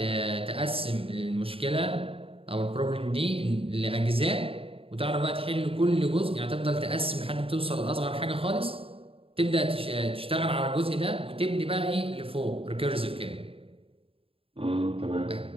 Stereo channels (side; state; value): left; late; 0.27 ms